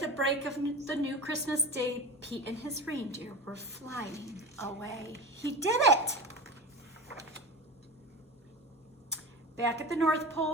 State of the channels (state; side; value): normal; both; correlation 0.28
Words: break of the new Christmas day, Pete and his reindeer were flying away. He did it! Back at the North